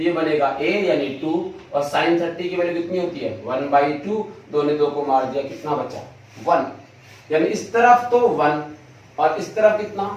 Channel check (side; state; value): both; identical; correlation 1.00